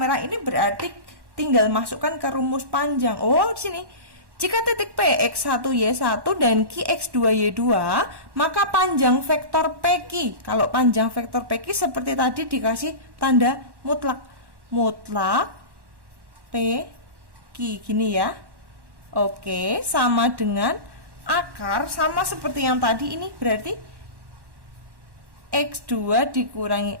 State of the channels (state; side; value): late; left; 1.1 ms